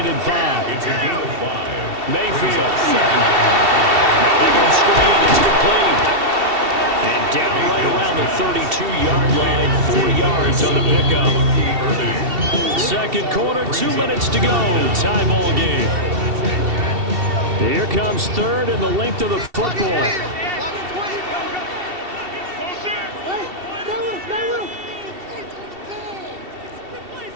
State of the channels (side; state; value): left; late; 2.7 ms